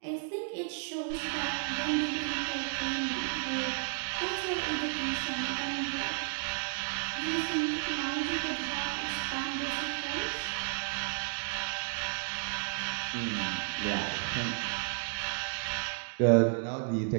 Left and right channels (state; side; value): silent; left; 56 dB below the other